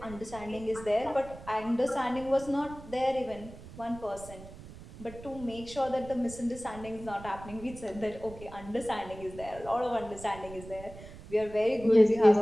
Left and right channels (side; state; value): right; noise; rumble, 16 dB below the sound